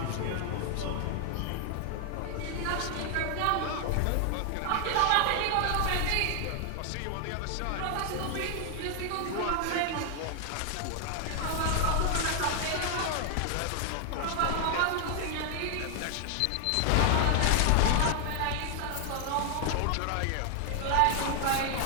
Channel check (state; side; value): different; both; correlation 0.00